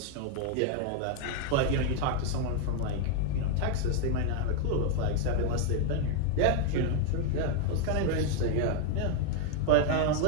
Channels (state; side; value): different; both; correlation 0.00